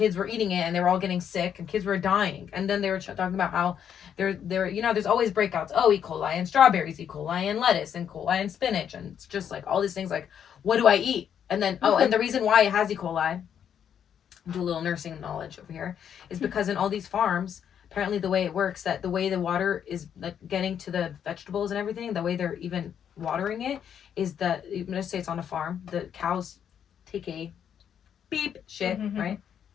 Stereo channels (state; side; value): quieter; right; 8.6 dB